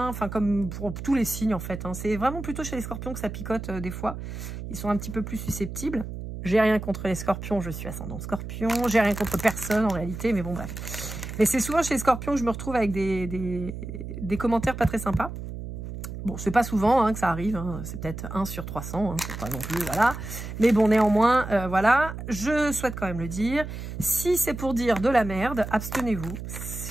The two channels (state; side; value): noise; right; hum, 8 dB below the sound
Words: enfin comme pour tous les signes en fait. Hein. C'est vraiment plutôt chez les scorpions que ça picote des fois, ils sont un petit peu plus susceptibles. J'ai rien contre les scorpions, je suis ascendant scorpion. J'ai rien contre personne en réalité, mais bon bref. Mais c'est souvent chez les scorpions que je me retrouve avec des commentaires pas très sympas. Bon, c'est pas souvent hein, que ça arrive, hein. C'est peut-être 1 sur 300, hein. C'est pas non plus, voilà. Mais bon, néanmoins, voilà, je souhaite quand même le dire. Si c'est pour dire de la merde, abstenez-vous.